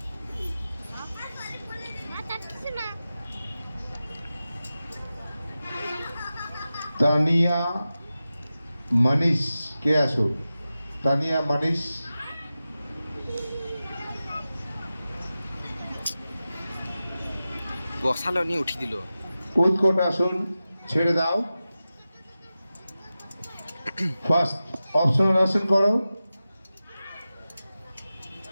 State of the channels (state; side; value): inverted; both; correlation -0.94